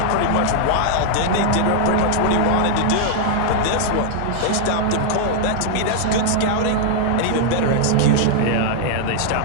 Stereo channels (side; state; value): both; different; correlation -0.01